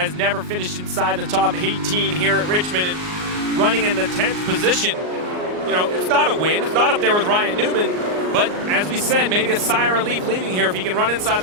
never finished inside the top 18 here at Richmond, and running in the 10th position. You know, it's not a win. It's not up there with Ryan Newman. But as we said, maybe a sigh of relief leaving here. If he can run inside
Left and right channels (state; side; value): late; left; 39 ms